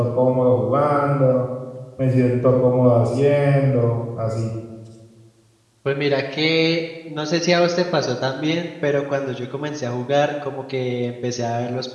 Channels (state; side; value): identical; both; correlation 1.00